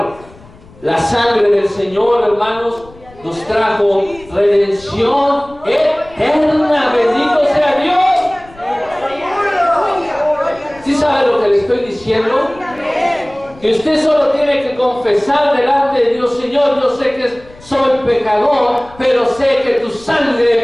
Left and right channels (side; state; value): left; noise; rumble, 23 dB below the sound